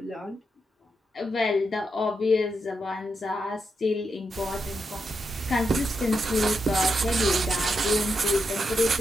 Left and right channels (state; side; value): normal; both; correlation 0.84